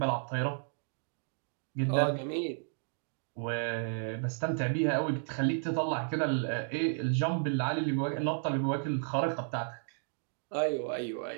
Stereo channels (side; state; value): left; silent; digital silence